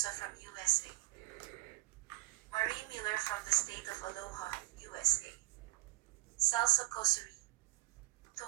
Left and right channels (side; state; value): left; quieter; 20.5 dB